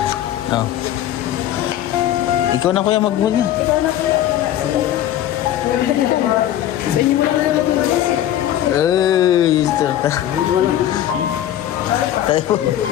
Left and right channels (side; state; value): right; quieter; 12.1 dB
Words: oh. Ikaw na kuya mag-move na. Ay, sister. Tayo.